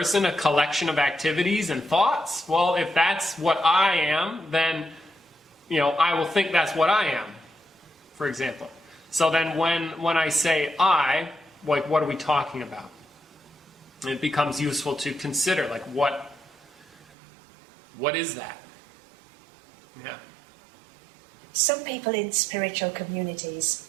a collection of activities and thoughts? Well, if that's what I am, then I will think that's what I am, for example. So then when I say I, like what are we talking about? It becomes useful to consider, like what is that? Yeah. Some people in spiritual communities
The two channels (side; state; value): left; drops out; at 17.1 s